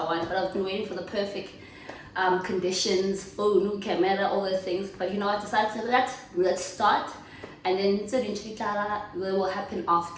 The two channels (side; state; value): both; identical; correlation 1.00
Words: one, but I've been waiting for the perfect conditions, phone, camera, all those things. But you know, I decided to let's start, and then eventually will happen